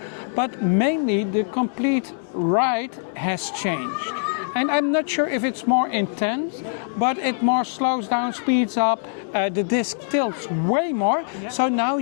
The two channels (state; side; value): silent; right; digital silence